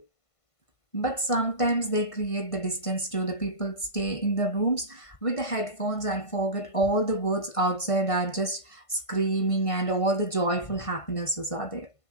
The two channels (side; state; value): right; late; 1.5 ms